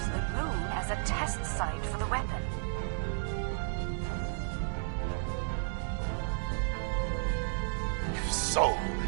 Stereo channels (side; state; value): left; silent; 56 dB below the other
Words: the moon as a test site for the weapon. If so,